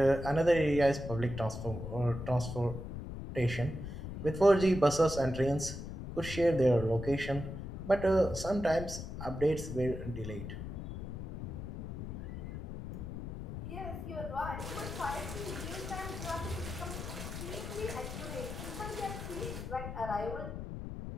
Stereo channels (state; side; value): noise; left; rumble, 7 dB below the sound